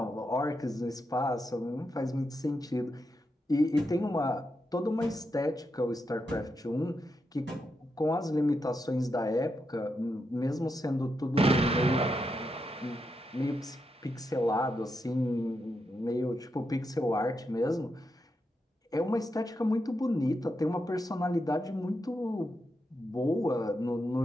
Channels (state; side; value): normal; both; correlation 0.85